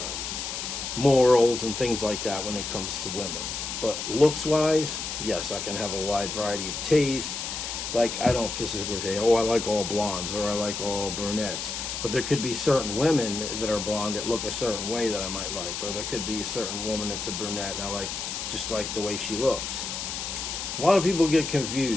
morals and things like that when it comes to women. But looks-wise, yes, I can have a wide variety of tastes. Like, I don't specifically say, oh, I like all blondes or I like all brunettes. But there could be certain women that are blonde that look a certain way that I might like. Or there could be a certain woman that's a brunette and I like just like the way she looks. A lot of people get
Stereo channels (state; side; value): noise; left; hiss, 5 dB below the sound